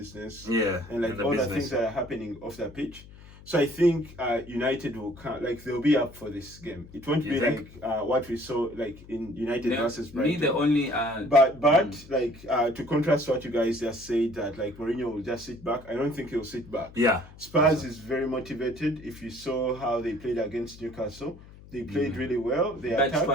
and like all the things that are happening off the pitch. So I think United will come, like they'll be up for this game. It won't be like what we saw like in United versus Brighton. Me the only but like to contrast what you guys just said, that like Mourinho will just sit back. I don't think he'll sit back. Yeah. Spurs is very motivated. If you saw how they played against Newcastle, they played really well. They attacked.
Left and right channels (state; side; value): noise; left; hum, 20 dB below the sound